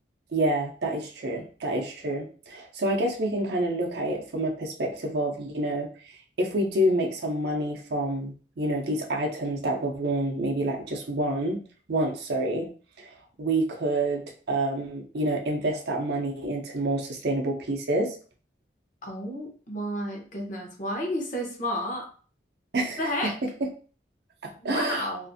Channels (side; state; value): both; normal; correlation 0.29